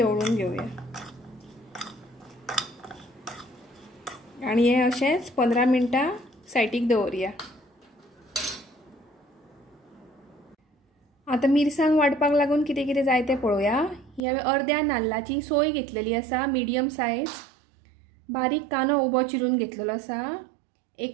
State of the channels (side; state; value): left; drops out; at 14.2 s